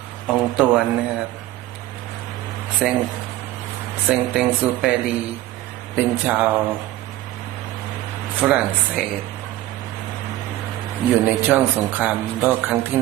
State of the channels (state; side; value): quieter; left; 15.3 dB